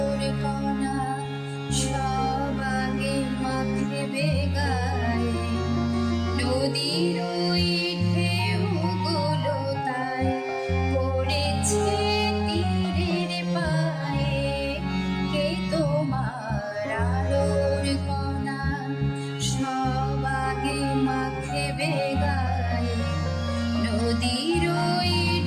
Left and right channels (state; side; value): identical; both; correlation 1.00